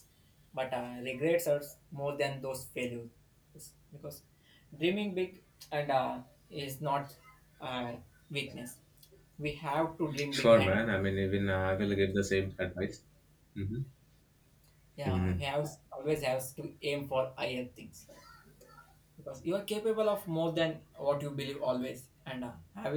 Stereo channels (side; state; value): both; identical; correlation 1.00